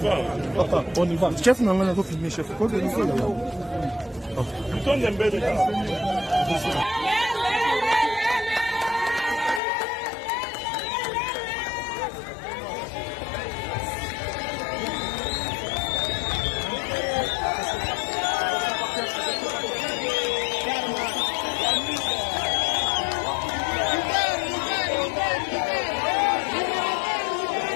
Papa, on y va. Chef n'a rien à filmer, chef. Quoi de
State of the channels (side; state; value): right; drops out; at 9.6 s